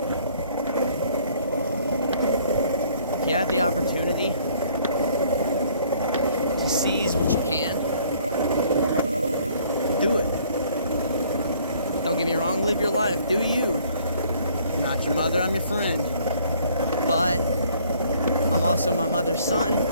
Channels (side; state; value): both; inverted; correlation -0.60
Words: If you have the opportunity to seize what you can, do it. Don't get me wrong, live your life. Do you. I'm not your mother, I'm your friend. But I'm also my mother's son.